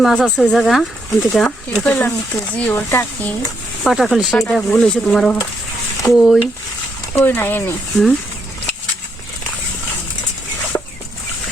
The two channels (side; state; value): both; normal; correlation 0.77